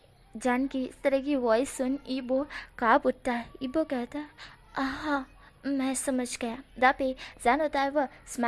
जान की इस तरह की वॉइस सुन ईबो काँप उठता है। ईबो कहता है, हाँ मैं समझ गया। जहाँ पे जान होता है वह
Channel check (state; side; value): identical; both; correlation 1.00